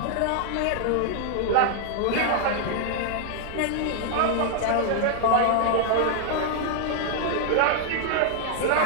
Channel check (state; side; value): different; both; correlation -0.01